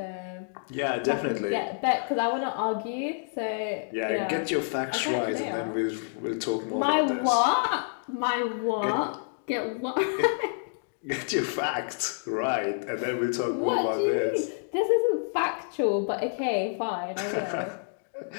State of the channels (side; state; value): right; silent; digital silence